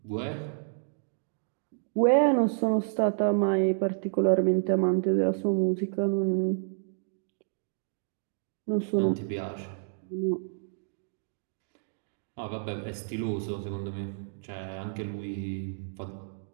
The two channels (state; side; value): silent; left; digital silence